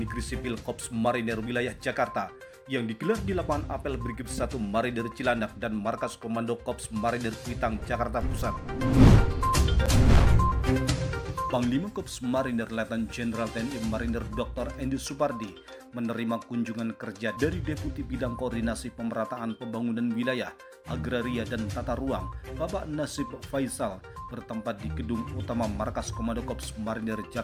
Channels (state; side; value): identical; both; correlation 1.00